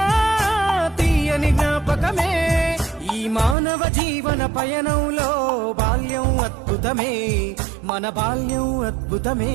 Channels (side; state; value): left; drops out; at 3.6 s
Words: తీయని జ్ఞాపకమే ఈ మానవ జీవన పయనంలో బాల్యం అద్భుతమే మన బాల్యం అద్భుతమే